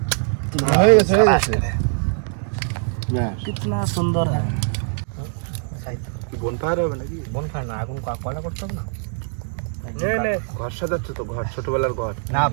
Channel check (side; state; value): left; silent; 64 dB below the other